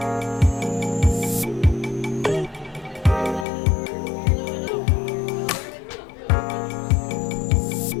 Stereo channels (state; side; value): drops out; right; at 3.5 s